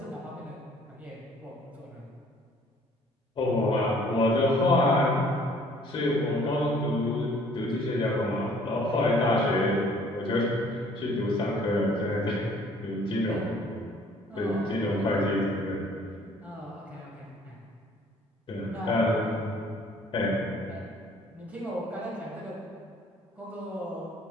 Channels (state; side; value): normal; both; correlation 0.57